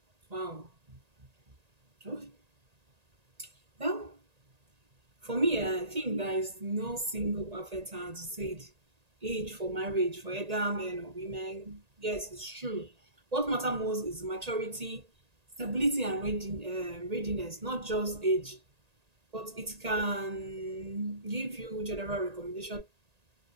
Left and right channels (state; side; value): late; left; 1.8 ms